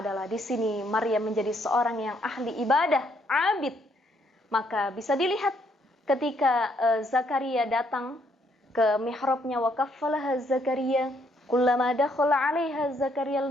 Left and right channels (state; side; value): normal; both; correlation 0.70